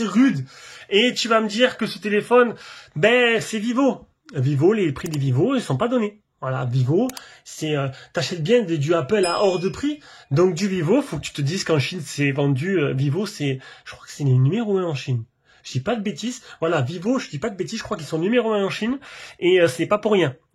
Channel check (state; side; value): identical; both; correlation 1.00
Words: est rude. Et tu vas me dire que ce téléphone, ben, c'est Vivo. Vivo, les prix des Vivo, ils sont pas donnés. Voilà, Vivo, t'achètes bien du Apple à hors de prix. Donc du Vivo, faut que tu te dises qu'en Chine, c'est vendu, Vivo, je crois que c'est les numéro 1 en Chine. Je dis pas de bêtises. Voilà, Vivo, je dis pas de bêtises, je crois qu'ils sont numéro 1 en Chine. Et c'est pas pour rien.